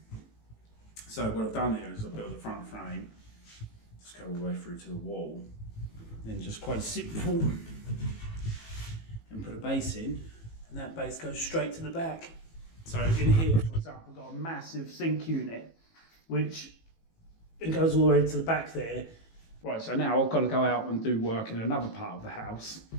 So what I've done here is I've built the front frame, just go all the way through to the wall, then just quite simple, and put a base in, and that base goes straight to the back. So in here, for example, I've got a massive sink unit, which it goes all the way to the back there. Right, so now I've got to go out and do work in another part of the house.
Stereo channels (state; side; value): late; right; 18 ms